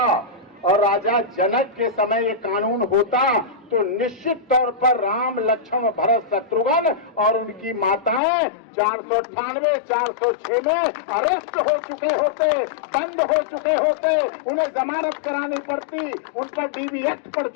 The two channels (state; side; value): drops out; right; at 8.2 s